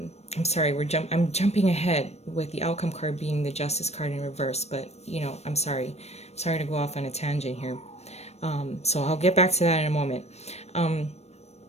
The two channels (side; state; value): right; late; 0.31 ms